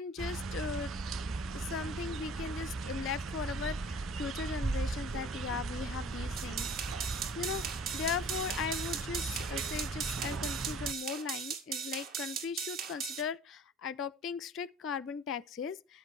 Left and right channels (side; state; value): both; normal; correlation 0.48